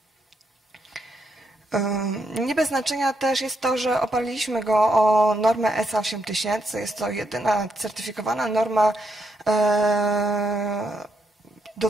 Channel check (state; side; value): normal; both; correlation 0.79